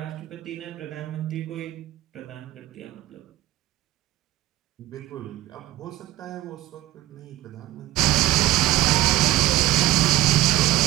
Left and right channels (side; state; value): left; quieter; 15.8 dB